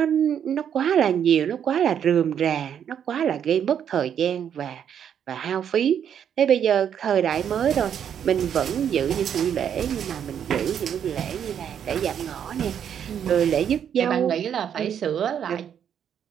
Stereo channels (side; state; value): left; quieter; 8.7 dB